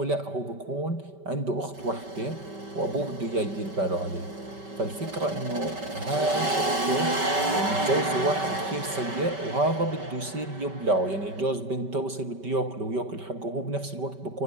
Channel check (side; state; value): left; late; 5.2 ms